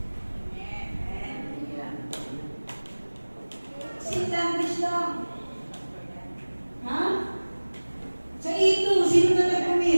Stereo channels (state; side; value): inverted; both; correlation -1.00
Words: Sing language lang. Ha? Sa E2, sino na